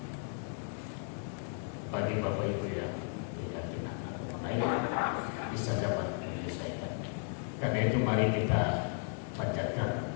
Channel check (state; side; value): silent; right; 55 dB below the other